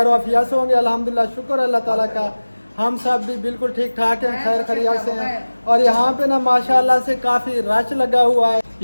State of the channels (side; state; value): both; inverted; correlation -1.00